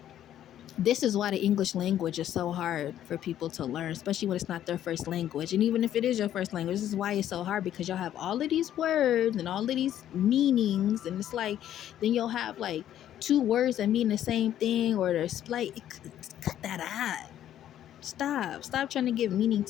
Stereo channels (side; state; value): right; quieter; 11.4 dB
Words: this is why the English language is so hard for people to learn, especially when it's not their first language. And even if it is your first language, this is why it's so hard, because y'all have all of these words and all of these meanings. And it's like, then you'll have like two words that mean the same thing, or there's like, cut that out. Stop trying to give meaning